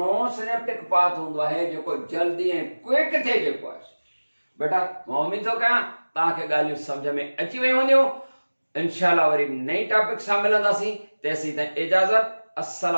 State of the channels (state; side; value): inverted; both; correlation -1.00